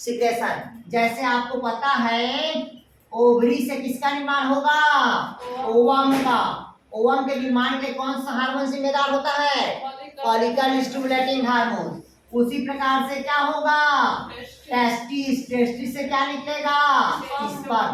जैसे आपको पता है ओवरी से किसका निर्माण होगा? ओवम का। ओवम के निर्माण के कौन सा हार्मोन जिम्मेदार होता है? Follicle stimulating hormone. उसी प्रकार से क्या होगा? टेस्टिस। टेस्टिस से क्या निकलेगा?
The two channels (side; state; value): both; identical; correlation 1.00